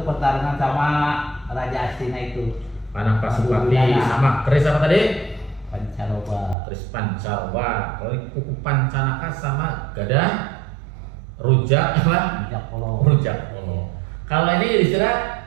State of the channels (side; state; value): left; drops out; at 6.6 s